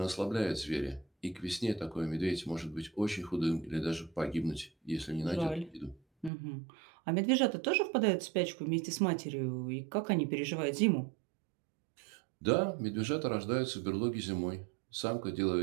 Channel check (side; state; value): left; drops out; at 6.3 s